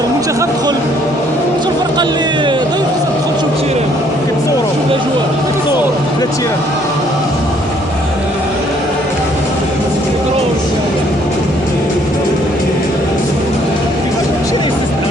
المنتخب دخل، شو الفرقه اللي ضيف تدخل تشوف التيران كتصوروا شوف الاجواء كتصور لا التيران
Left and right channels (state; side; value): noise; left; hum, 25 dB below the sound